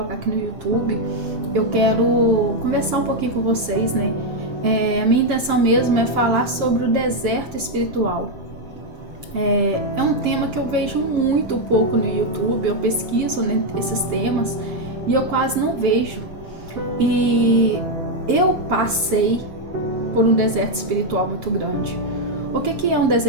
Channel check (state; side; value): late; left; 7.5 ms